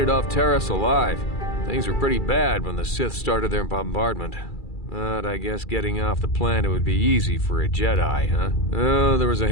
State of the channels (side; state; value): right; late; 2.3 ms